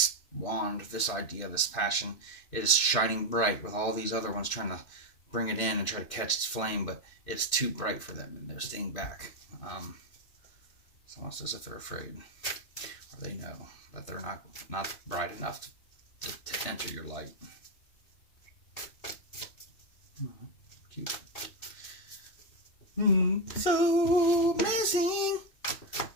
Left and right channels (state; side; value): late; right; 2.6 ms